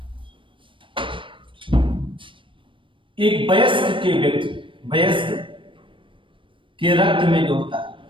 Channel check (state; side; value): late; left; 0.25 ms